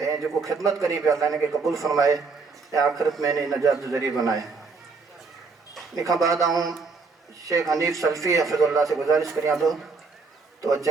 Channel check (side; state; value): left; quieter; 4.5 dB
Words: जेको ख़िदमत करी पिया अल्लाह इनखे क़बूल फरमाए ऐं आख़िरत में इन नजात जो ज़रिए बनाए इन खां बाद आऊं शेख हनीफ सल्फी हफ़िज़ुल्लाह से गुजारिश करियां थो तो